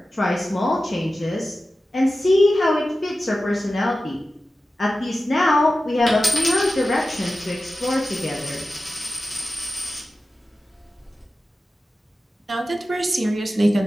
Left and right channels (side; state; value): both; normal; correlation 0.94